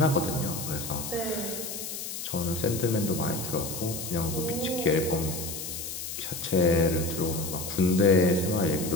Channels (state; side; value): noise; left; hiss, 7 dB below the sound